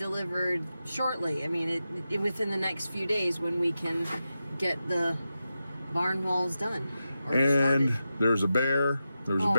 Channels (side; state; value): both; inverted; correlation -0.91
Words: shortly. I mean, within the next few days when we can get the barn walls done. And started. there's a bear. There's a